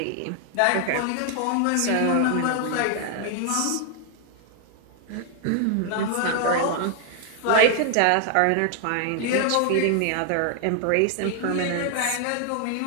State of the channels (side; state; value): both; different; correlation 0.00